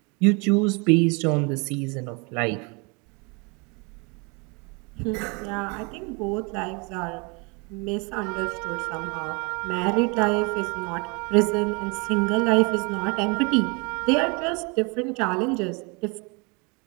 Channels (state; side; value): quieter; left; 30.9 dB